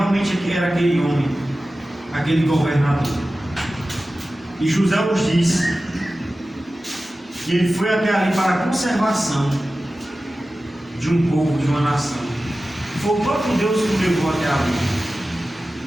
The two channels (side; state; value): both; normal; correlation 0.95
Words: era aquele homem, aquele governador. E José os disse que ele foi até ali para a conservação de um povo, de uma nação. Foi o próprio Deus que o levou até ali.